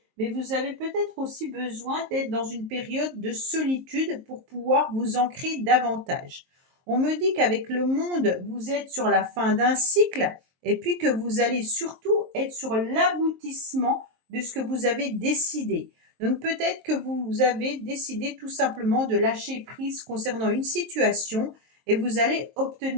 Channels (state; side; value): late; left; 23 ms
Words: mais vous avez peut-être aussi besoin d'être dans une période de solitude pour pouvoir vous ancrer davantage. On me dit qu'avec le monde, vous êtes sur la fin d'un cycle et puis que vous allez surtout être sur l'aboutissement de ce que vous avez décidé. Donc peut-être que vous avez décidé tout simplement de lâcher prise concernant une situation et vous allez